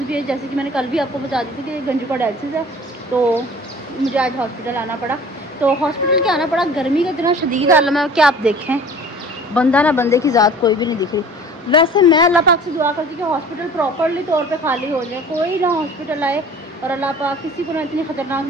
भी है, जैसे कि मैंने कल भी आपको बता दी थी कि गंजू का डायलिसिस है, तो मुझे आज हॉस्पिटल आना पड़ा। तो हॉस्पिटल क्या आना पड़ा, गर्मी का इतना शदीद आलम है कि आप देखें बंदा ना बंदे की ज़ात कोई भी नहीं दिख रही। वैसे मैं अल्लाह पाक से दुआ करती हूँ कि हॉस्पिटल प्रॉपरली तौर पे खाली हो जाए, कोई ना हॉस्पिटल आए और अल्लाह पाक किसी को ना इतनी खतरनाक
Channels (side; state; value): both; normal; correlation 0.45